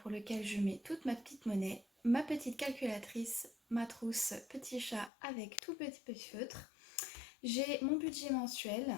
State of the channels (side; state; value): right; drops out; at 5.1 s